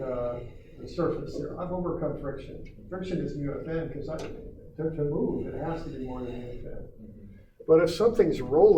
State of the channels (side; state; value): both; identical; correlation 1.00